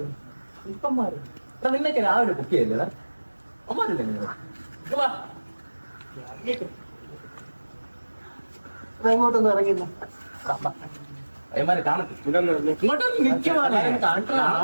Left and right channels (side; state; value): both; inverted; correlation -1.00